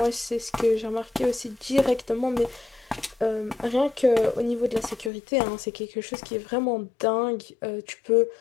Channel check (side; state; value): right; drops out; at 5.1 s